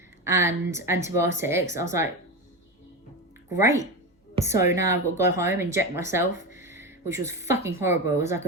and antibiotics. I was like, great. So now I've got to go home, inject myself, which was fucking horrible. It was like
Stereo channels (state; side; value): normal; both; correlation 0.19